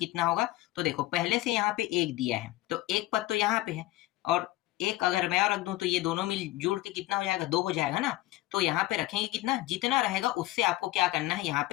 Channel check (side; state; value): right; quieter; 17.0 dB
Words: होगा? तो देखो, पहले से यहाँ पे 1 दिया है, तो एक पद तो यहाँ पे है और एक अगर मैं और रख दूं तो ये दोनों मिल जुड़ के कितना हो जाएगा? 2 हो जाएगा ना। तो यहाँ पे रखेंगे कितना? जितना रहेगा उससे आपको क्या करना है? यहाँ